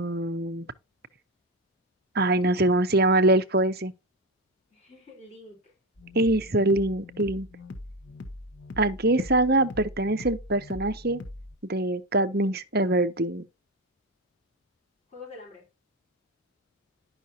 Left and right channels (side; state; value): both; normal; correlation 0.14